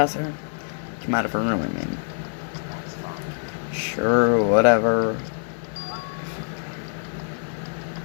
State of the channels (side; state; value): right; silent; digital silence